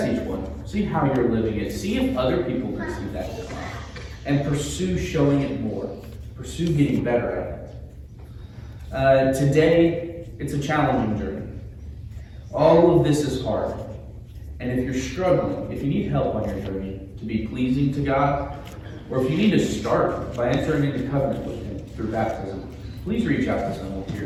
each one. See how you're living it. See if other people can see that. And pursue showing it more. Pursue getting better at it. Today, it's a challenging journey. All of this is hard. And if you're struggling, if you need help on your journey to be pleasing to God, or if you need to start by entering into covenant with Him through baptism, please reach out to someone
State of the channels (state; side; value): identical; both; correlation 1.00